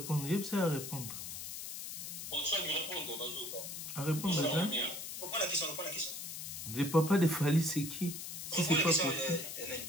il y a à répondre. Bon, soit lui répondre, à répondre, ça. Reprends la question. Le papa de Fally, c'est qui? Si c'est pas possible.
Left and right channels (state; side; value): noise; left; hiss, 7 dB below the sound